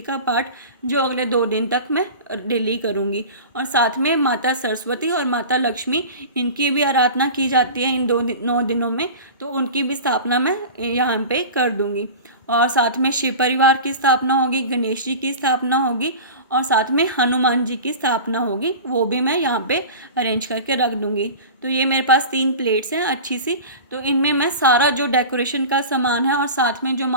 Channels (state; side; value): inverted; both; correlation -0.34